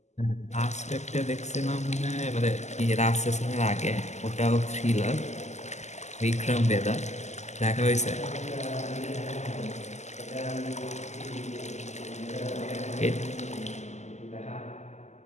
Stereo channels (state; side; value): late; right; 0.33 ms